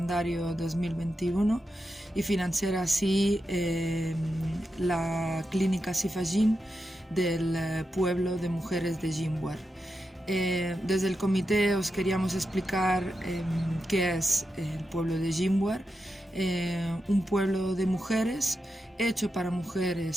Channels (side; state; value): both; normal; correlation 0.88